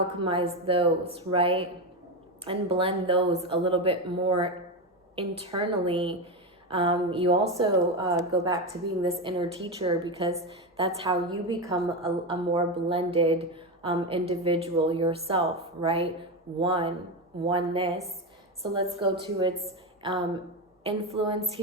those, right, and blend those a little bit more internally, you also go back to being this inner teacher, because that's how you become a more blended individual yourself, right? Oneness. So let's go to its influence.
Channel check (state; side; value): normal; both; correlation 0.14